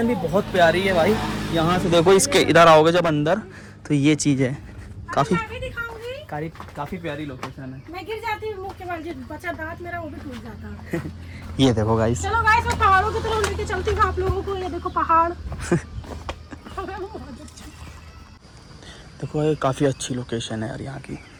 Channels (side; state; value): both; identical; correlation 1.00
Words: भी बहुत प्यारी है भाई। यहाँ से देखो, इसके इधर आओगे जब अंदर तो ये चीज़ है, काफ़ी मैं भी दिखाऊंगी। काफ़ी प्यारी लोकेशन है। मैं गिर जाती हूँ मुँह के बल, जो बचा दांत मेरा वो भी टूट जाता है। ये देखो गाइस, चलो गाइस मैं पहाड़ों की तरफ लेके चलती हूँ आप लोगों को। ये देखो पहाड़। देखो ये काफ़ी अच्छी लोकेशन है यार, यहाँ की